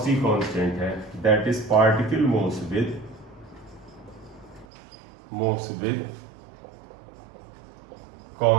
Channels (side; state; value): left; drops out; at 4.7 s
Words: कांस्टेंट है, that is particle moves with